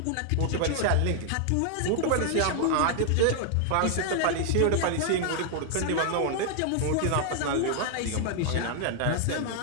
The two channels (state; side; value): different; both; correlation 0.00